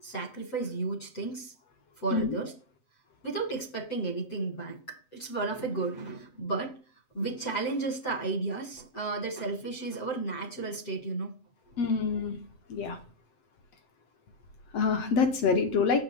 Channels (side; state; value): right; late; 7.8 ms